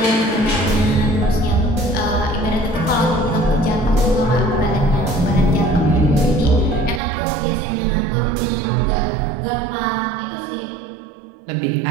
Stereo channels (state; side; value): drops out; left; at 7.0 s